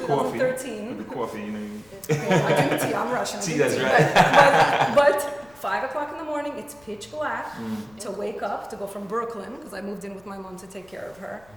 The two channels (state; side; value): noise; left; rumble, 29 dB below the sound